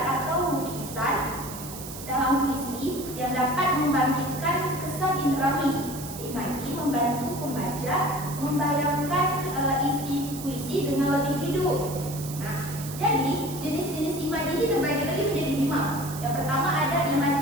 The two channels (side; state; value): right; noise; hiss, 12 dB below the sound